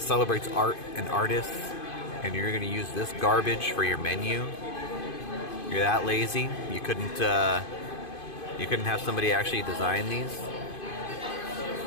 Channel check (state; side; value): late; right; 2.5 ms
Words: celebrates art and artists, and you're going to use this garbage for your menu. You're that lazy? You couldn't have somebody actually design these?